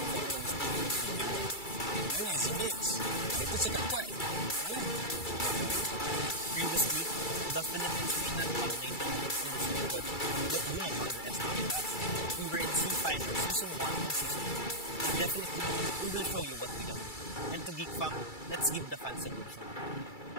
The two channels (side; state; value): right; late; 2.3 ms